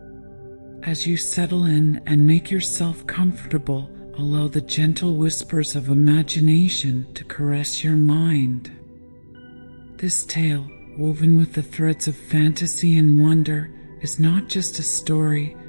As you settle in and make yourself comfortable, allow the gentle whispers of imagination to caress your mind. This tale, woven with the threads of fantasy and wonder, is not just a story,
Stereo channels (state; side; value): inverted; both; correlation -1.00